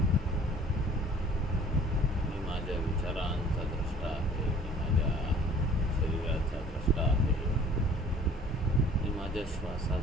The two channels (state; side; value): normal; both; correlation 0.52